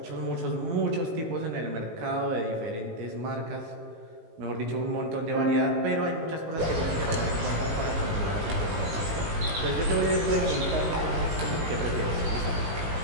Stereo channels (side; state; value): left; late; 18 ms